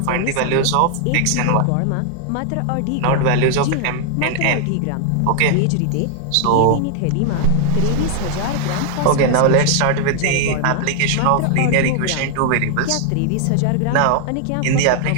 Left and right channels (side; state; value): both; different; correlation 0.00